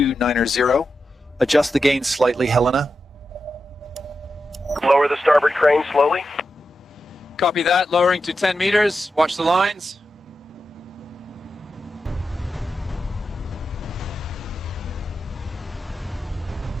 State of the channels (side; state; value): both; normal; correlation 0.89